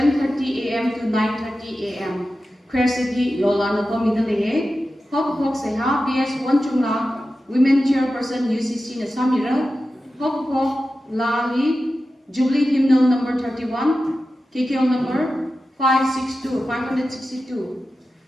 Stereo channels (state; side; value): normal; both; correlation 0.93